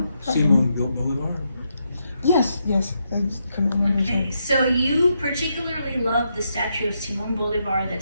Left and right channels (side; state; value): both; inverted; correlation -0.81